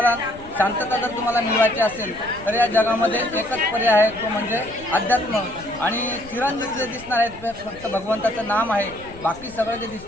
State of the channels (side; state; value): left; noise; rumble, 19 dB below the sound